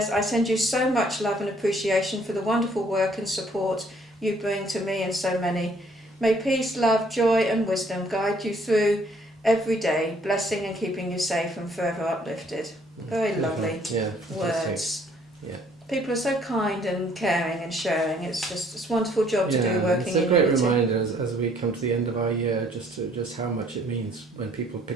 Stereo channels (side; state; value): both; normal; correlation 0.62